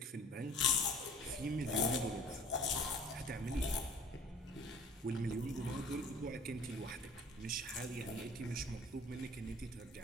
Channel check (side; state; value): both; normal; correlation 0.50